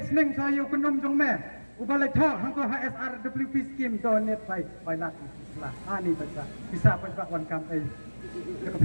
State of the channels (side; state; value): both; inverted; correlation -1.00